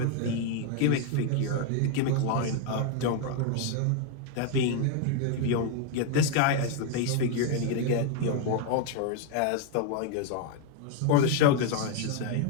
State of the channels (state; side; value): different; both; correlation 0.01